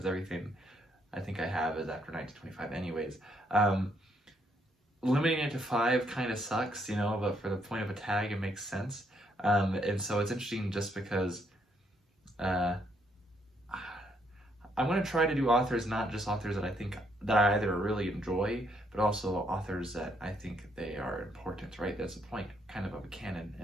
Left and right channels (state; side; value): normal; both; correlation 0.73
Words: everything I think I have is after 1925 anyways. Limiting it to 5 kind of sucks, you know, but for the point of a tag, it makes sense. And so it's interesting just because I want to try to do authors, not just authors that I think that I either really enjoy, but also authors that I think they are important, right? That's the point kind of a canon,